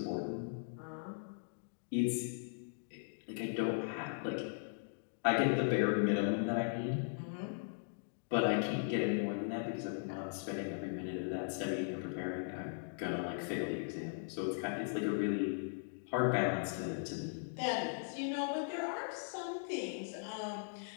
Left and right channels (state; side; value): silent; right; digital silence